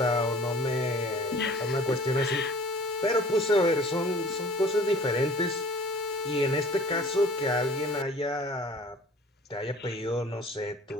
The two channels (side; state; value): both; normal; correlation 0.48